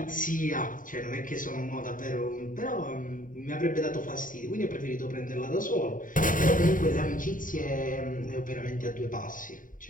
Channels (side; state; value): right; late; 0.39 ms